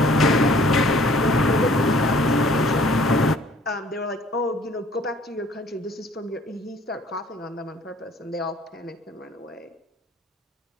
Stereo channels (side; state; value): both; normal; correlation 0.56